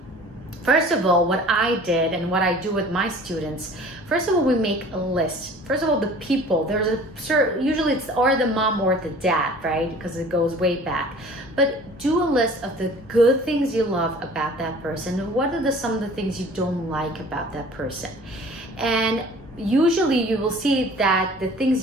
first of all, what I did and what I do with my students, first of all, we make a list. First of all, the people, usually it's or the mom or the dad, right? Because it goes way back. But do a list of the good things you love about that person, and what are some of the things you don't like about that person. And usually you will see that the things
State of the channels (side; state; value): both; normal; correlation 0.47